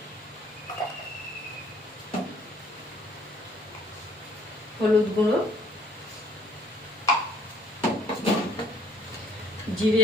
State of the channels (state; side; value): normal; both; correlation 0.60